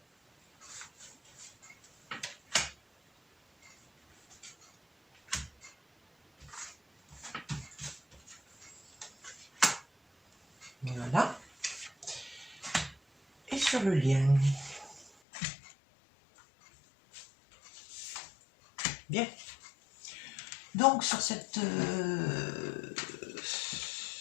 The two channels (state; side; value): drops out; right; at 15.1 s